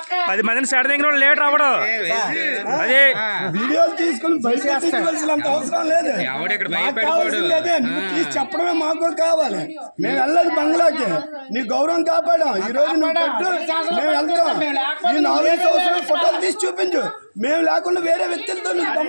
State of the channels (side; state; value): both; inverted; correlation -1.00